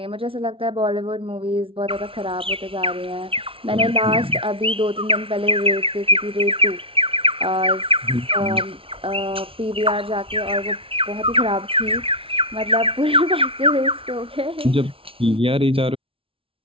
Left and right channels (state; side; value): late; left; 0.26 ms